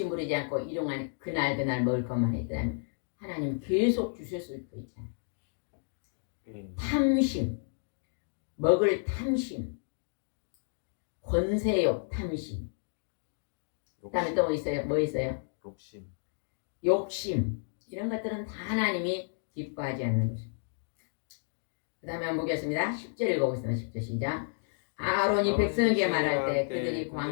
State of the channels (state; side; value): silent; right; digital silence